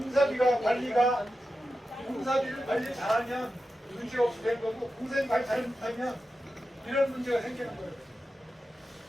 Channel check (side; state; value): both; normal; correlation 0.91